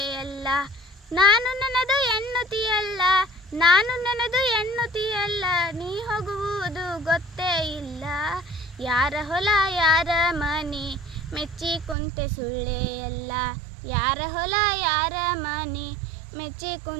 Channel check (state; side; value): drops out; left; at 12.0 s